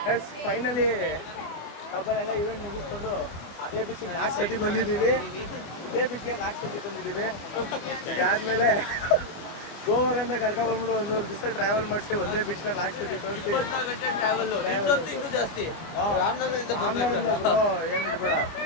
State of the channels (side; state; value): right; late; 25 ms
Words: Yes, finally ಡಬ್ಬಲೆಲ್ಲ ಇವೆಂಟ್ ಮುಗಿಸ್ಕೊಂಡು ಅದೇ ಬೀಚಿಗೆ 4 ಸತಿ ಬಂದಿದ್ದೀವಿ. ಇದೇ ಬೀಚ್ಗೆ 4 ಸತಿ ಬಂದಿದ್ದೀವಿ. ಇದಾದ್ಮೇಲೆ ಗೋವಾಗಂತ ಕರ್ಕೊಂಡ್ಬಂದ್ಬಿಟ್ಟು 1 ಮೂರು ದಿವಸ ಟ್ರಾವೆಲ್ ಮಾಡಿಸಿ ಒಂದೇ ಬೀಚ್ನ 4 ಸತಿ ತೋರಿಸಿ ಟ್ರಾವೆಲ್. ಆಮ್ನಾರಿಂದ ಬ್ರೋ ಏನು ಇರಬೇಡ.